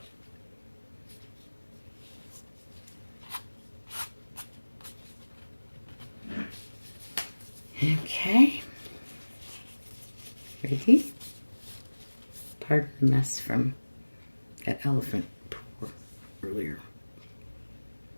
Okay. Ready? Pardon the mess from that elephant pour earlier.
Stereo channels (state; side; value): inverted; both; correlation -1.00